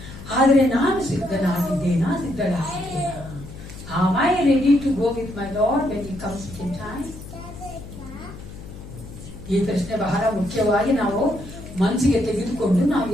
ಆದ್ರೆ ನಾನು ಸಿದ್ಧನಾಗಿದ್ದೇನಾ? Am I ready to go with my Lord when he comes in time? ಈ ಪ್ರಶ್ನೆ ಬಹಳ ಮುಖ್ಯವಾಗಿ ನಾವು ಮನಸ್ಸಿಗೆ ತೆಗೆದುಕೊಂಡು ನಾವು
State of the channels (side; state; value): left; noise; hum, 14 dB below the sound